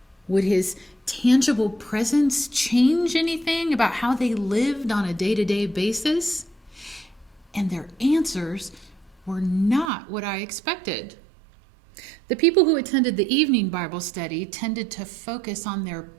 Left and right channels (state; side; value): drops out; left; at 9.9 s